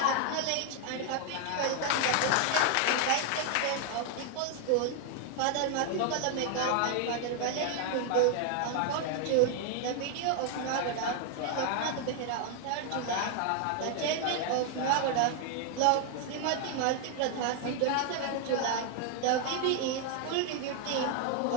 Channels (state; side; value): different; both; correlation 0.00